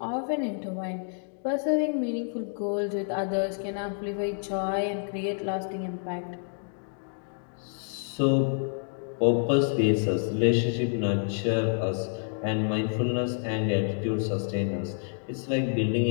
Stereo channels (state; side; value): silent; right; digital silence